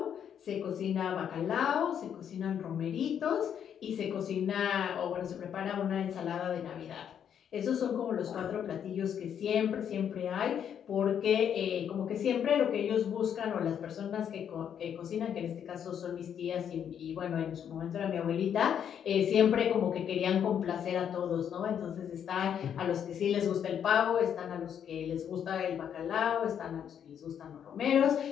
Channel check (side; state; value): right; quieter; 8.7 dB